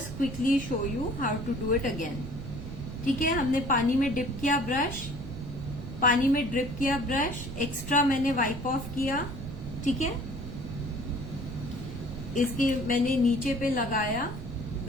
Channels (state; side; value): noise; right; rumble, 9 dB below the sound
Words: quickly show you how to do it again. ठीक है, हमने पानी में डिप किया ब्रश, पानी में ड्रिप किया ब्रश, एक्स्ट्रा मैंने वाइप ऑफ किया, ठीक है? इसके मैंने नीचे पे लगाया,